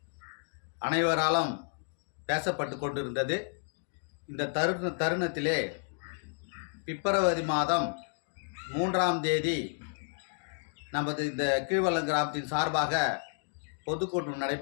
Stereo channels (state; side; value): silent; right; digital silence